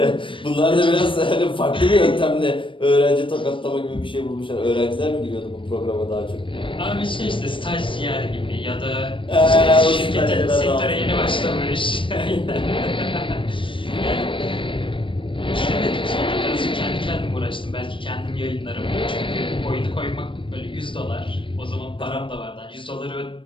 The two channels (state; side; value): late; right; 0.25 ms